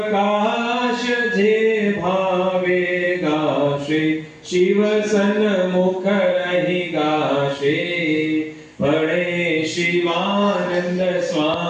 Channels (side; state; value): both; identical; correlation 1.00